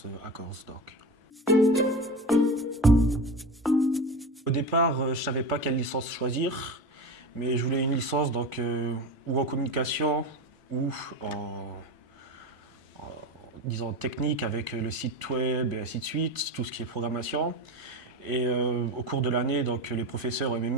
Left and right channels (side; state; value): both; normal; correlation 0.25